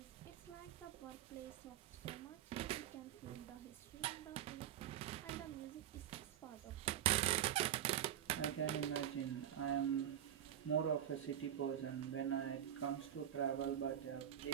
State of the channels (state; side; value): quieter; left; 10.7 dB